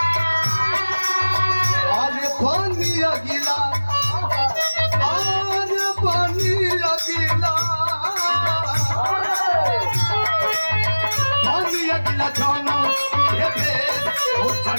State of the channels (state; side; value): inverted; both; correlation -1.00